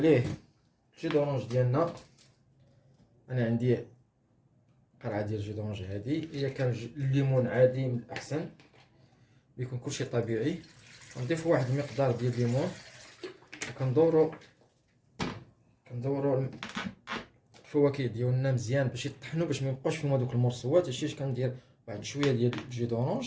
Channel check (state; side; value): identical; both; correlation 1.00